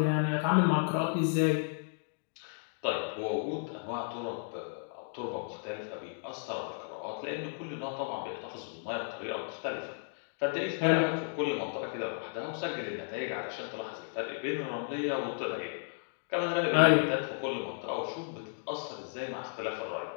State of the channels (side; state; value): right; silent; digital silence